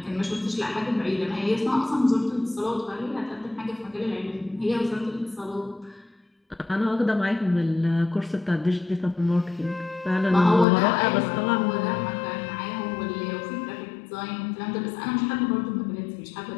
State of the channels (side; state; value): right; drops out; at 10.7 s